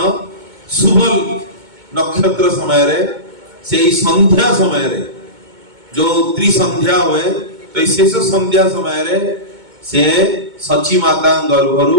शुभ नक्षत्र समय रे से संध्या समय रे जो त्रिसंध्या हुए तो शेष संध्या समय रे से सची माता गर्भरु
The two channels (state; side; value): late; left; 2.2 ms